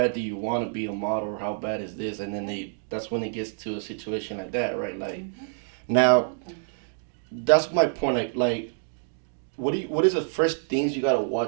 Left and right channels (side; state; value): left; silent; digital silence